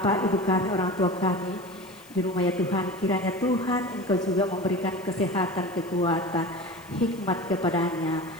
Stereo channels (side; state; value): left; noise; hiss, 24 dB below the sound